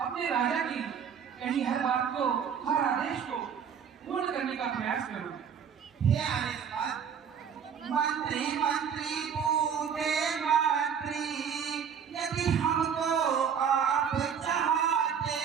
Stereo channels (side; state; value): left; quieter; 7.5 dB